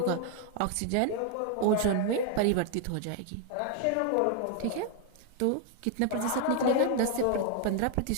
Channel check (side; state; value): both; different; correlation 0.00